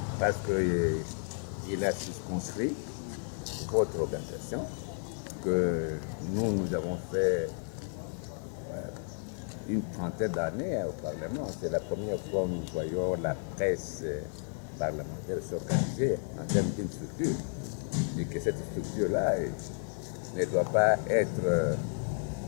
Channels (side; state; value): right; silent; 56 dB below the other